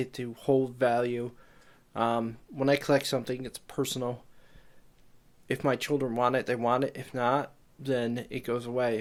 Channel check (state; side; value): identical; both; correlation 1.00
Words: to hold value. When I collect something, it's personal. If my children want it, they want it. If not, then it goes